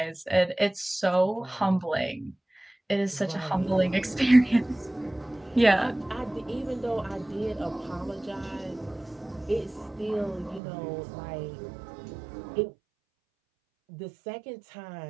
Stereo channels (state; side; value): drops out; left; at 10.6 s